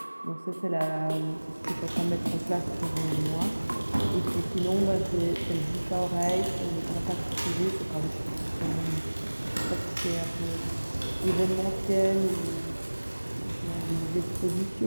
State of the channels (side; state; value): both; inverted; correlation -1.00